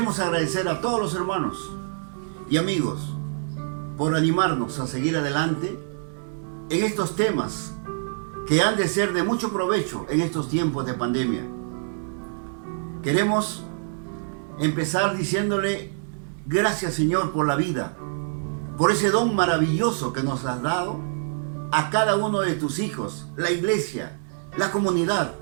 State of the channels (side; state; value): left; silent; 61 dB below the other